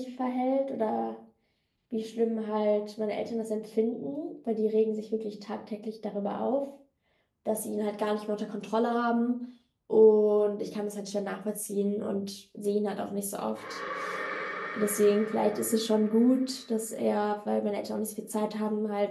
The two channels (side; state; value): both; identical; correlation 1.00